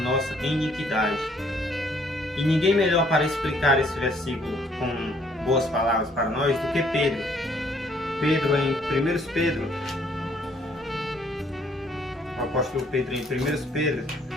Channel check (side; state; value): both; normal; correlation 0.64